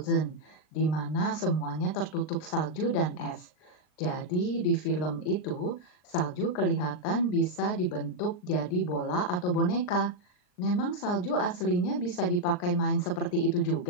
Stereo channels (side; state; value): right; late; 39 ms